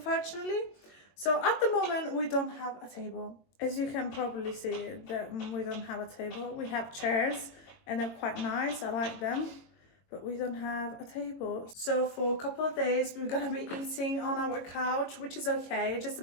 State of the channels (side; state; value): right; late; 22 ms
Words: So at the moment, we don't have a table. As you can probably see, that we don't have a table. We have chairs and they're quite nice. I like them, but we don't have a table. So for a couple of days, we're gonna be eating on our couch, which is okay. Just a